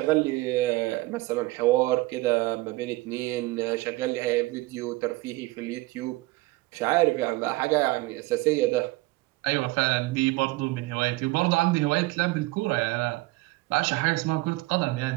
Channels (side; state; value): left; quieter; 20.8 dB